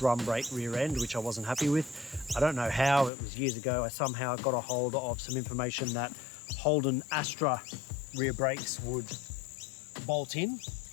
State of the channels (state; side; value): drops out; right; at 3.1 s